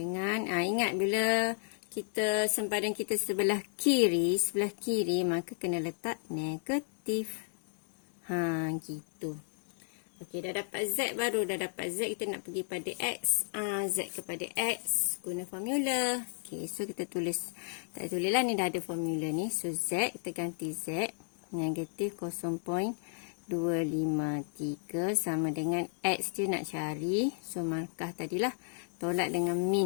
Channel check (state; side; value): silent; right; 56 dB below the other